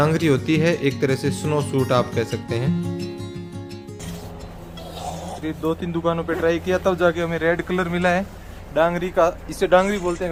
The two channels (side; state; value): both; identical; correlation 1.00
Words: होती है एक तरह से स्नो सूट आप कह सकते हैं। 2-3 दुकानों पे ट्राई किया, तब जाके हमें रेड कलर मिला है डांगरी का। इसे डांगरी बोलते हैं